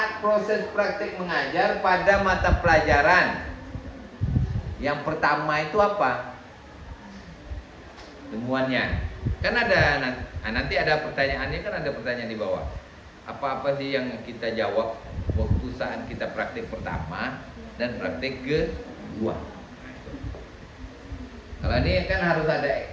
proses praktik mengajar pada mata pelajaran. Yang pertama itu apa? Temuannya. Kan ada nanti ada pertanyaannya, kan ada pertanyaan di bawah. Apa-apa sih yang kita jawab waktu saat kita praktik pertama dan praktik kedua? Kalau ini kan harus ada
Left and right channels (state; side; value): identical; both; correlation 1.00